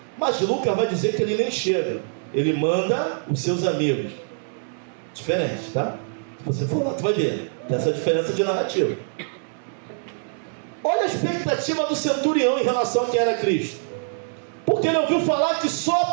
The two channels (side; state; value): left; silent; digital silence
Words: Mas Lucas vai dizer que ele nem chega, ele manda os seus amigos. Diferente, tá? Se você for lá, tu vai ver, tem essa diferença de narrativa. Olha a expectativa do centurião em relação a quem era Cristo. Porque ele ouviu falar que só a